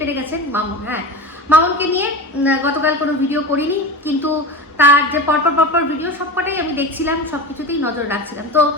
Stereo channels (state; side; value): normal; both; correlation 0.28